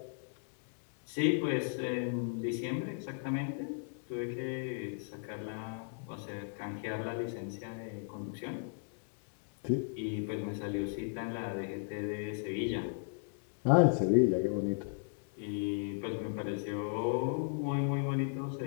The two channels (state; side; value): silent; right; digital silence